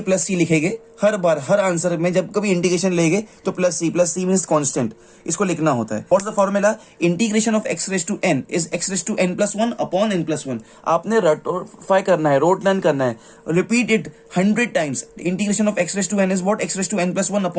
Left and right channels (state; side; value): identical; both; correlation 1.00